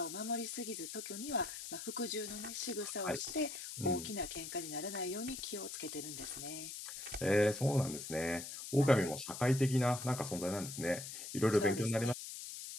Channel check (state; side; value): noise; left; hiss, 8 dB below the sound